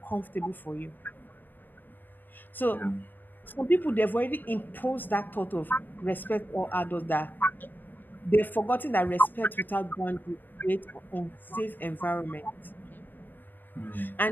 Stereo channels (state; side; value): late; right; 0.090 ms